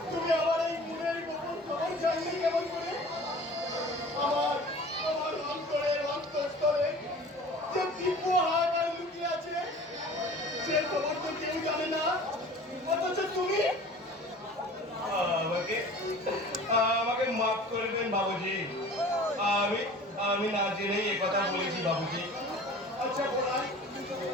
তুমি আমার এই মনের গোপন খবর জানলে কেমন করে? আমার আমার অন্তরের অন্তঃস্থলে যে দিব্য হাহাকার লুকিয়ে আছে, সে খবর তো কেউ জানে না। অথচ তুমি আমাকে আমাকে মাফ করে দেন বাবুজি। আমি আমি না জেনেই এ কথা বলেছি বাবুজি। আচ্ছা বলাই,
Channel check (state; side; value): normal; both; correlation 0.43